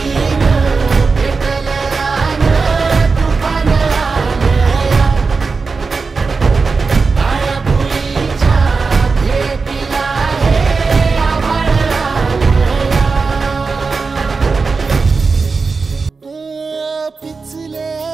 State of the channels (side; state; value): left; quieter; 4.5 dB